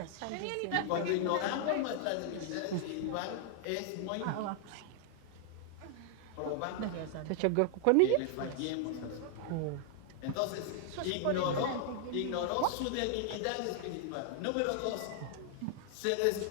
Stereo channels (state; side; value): different; both; correlation 0.00